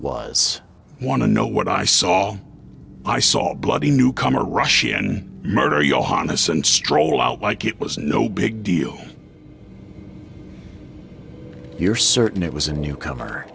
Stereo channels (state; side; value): identical; both; correlation 1.00